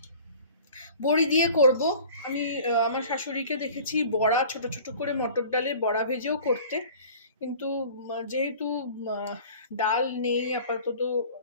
বড়ি দিয়ে করব। আমি আমার শাশুড়িকে দেখেছি বড়া ছোট ছোট করে মটর ডালের বড়া ভেজেও করতে, কিন্তু যেহেতু ডাল নেই আপাতত,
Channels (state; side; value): inverted; both; correlation -0.45